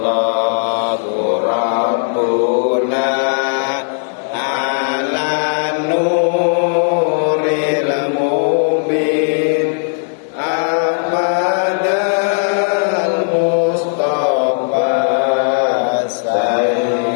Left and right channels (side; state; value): right; silent; digital silence